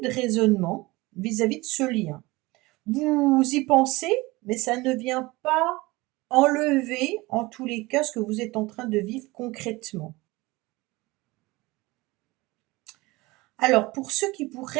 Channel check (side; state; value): left; quieter; 21.7 dB